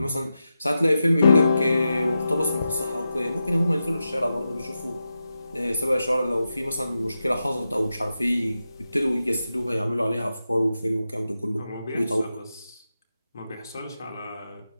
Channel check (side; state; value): both; inverted; correlation -0.90